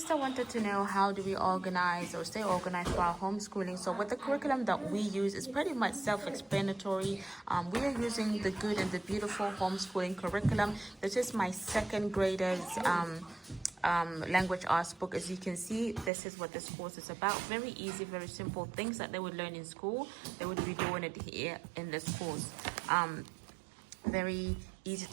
sister wanted to know how do we organize or stay organized for our homeschooling. So with the curriculum that we use is pretty much self-explanatory. We are using the Good and the Beautiful homeschooling curriculum. This is my second grader's language arts book. As you can see, this is what this course is about. Very easy, very simple things that they would learn in school. They would be doing it here in this course. Very easy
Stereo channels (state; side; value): drops out; left; at 16.1 s